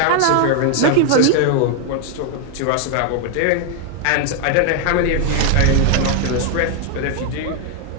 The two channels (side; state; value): both; different; correlation 0.00